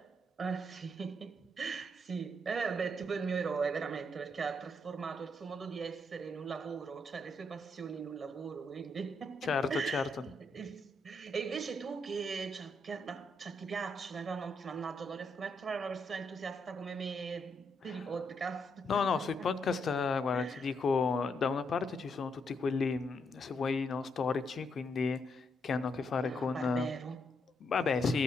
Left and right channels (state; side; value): normal; both; correlation 0.78